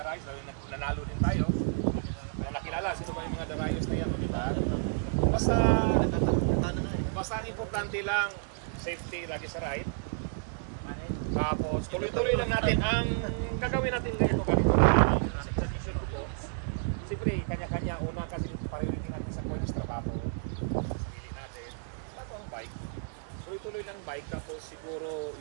Lalo nanalo din tayo. Nakilala, sino ba yung mga Darayos na yan, di ba? Basta ang importante lang, safety lagi sa ride. Tapos tuloy-tuloy lang natin ang gagawin natin ngayon. Siyempre, kanya-kanya una kasi priority natin sa kuya trabaho, sarili natin, bago ang bike. Tuloy-tuloy lang bike, tapos siguro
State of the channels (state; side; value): silent; left; digital silence